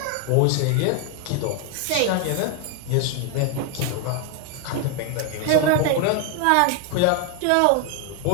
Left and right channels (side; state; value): both; different; correlation 0.01